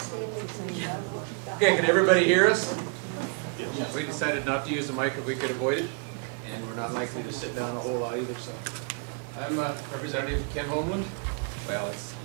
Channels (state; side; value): quieter; left; 36.9 dB